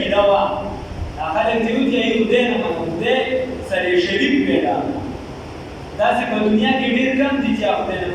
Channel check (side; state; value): both; identical; correlation 1.00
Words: وه دا خلک چې وایي چې خدای نه منو خدای سره یې شریک پیدا کړو. داسې په دنیا کې ډېر کم دي چې خدای نه